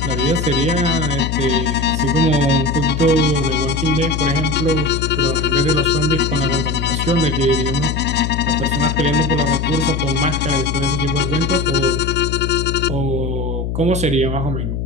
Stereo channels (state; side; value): noise; left; hum, 3 dB below the sound